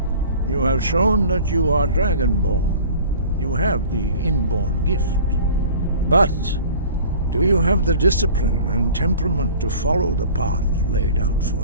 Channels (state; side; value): inverted; both; correlation -0.43